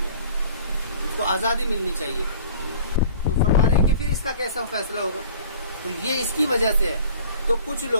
اس کو آزادی ملنی چاہیے۔ تو فرما رہے ہیں کہ پھر اس کا کیسا فیصلہ ہوگا؟ تو یہ اس کی وجہ سے ہے۔ تو کچھ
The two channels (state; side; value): inverted; both; correlation -0.46